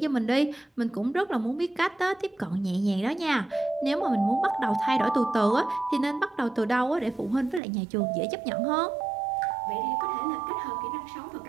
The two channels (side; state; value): left; drops out; at 7.6 s